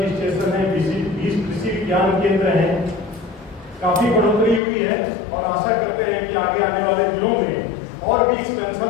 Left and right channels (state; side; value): drops out; right; at 4.6 s